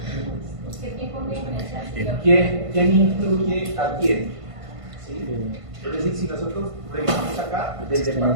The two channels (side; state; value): left; late; 1.5 ms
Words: quién incluye a quién? ¿Sí? Es decir, si nosotros revisamos acá, del